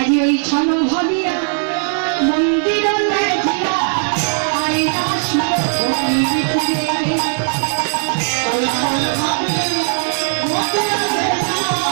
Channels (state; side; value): silent; left; 67 dB below the other